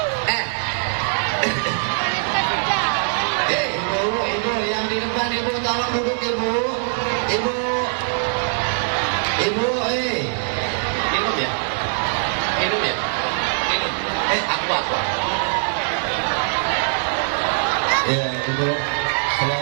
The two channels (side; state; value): left; silent; digital silence